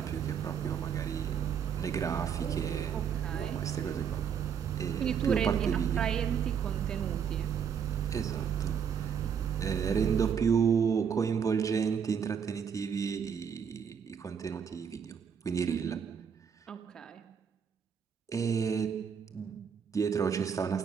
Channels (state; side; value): quieter; left; 7.3 dB